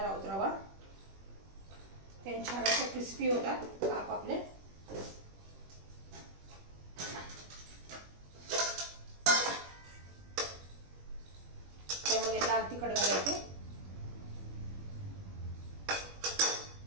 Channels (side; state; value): left; late; 21 ms